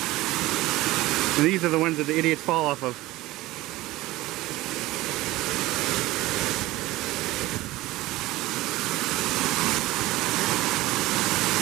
And these are the ones that the idiots fall off of.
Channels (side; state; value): left; quieter; 18.2 dB